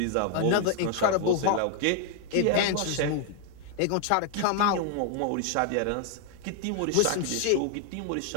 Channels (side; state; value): both; different; correlation 0.00